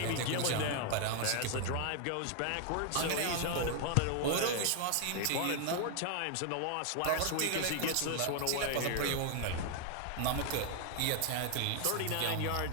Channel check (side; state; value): both; different; correlation 0.00